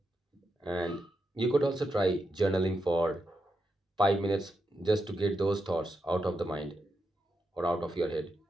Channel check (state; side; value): normal; both; correlation 0.85